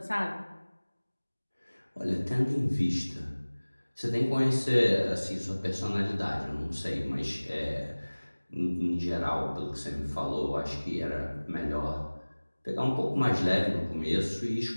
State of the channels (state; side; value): inverted; both; correlation -1.00